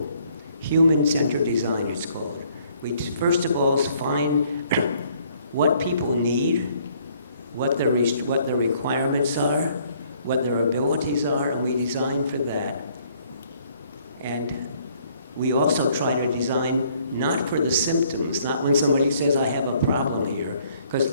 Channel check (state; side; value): inverted; both; correlation -0.64